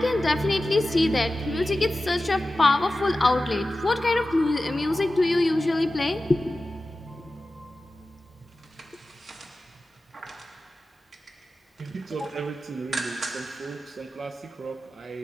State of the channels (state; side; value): normal; both; correlation 0.94